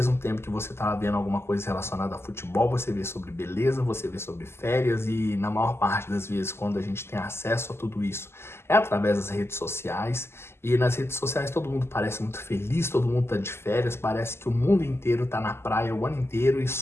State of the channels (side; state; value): right; late; 0.12 ms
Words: tempo que você está vendo alguma coisa relacionada a futebol, você vê sobre beleza, você vê sobre férias e na maior parte das vezes quando a gente tem acesso a tudo isso é através das redes sociais e nas redes sociais todo mundo parece muito feliz, todo mundo está de férias, parece que o mundo inteiro está na praia o ano inteiro e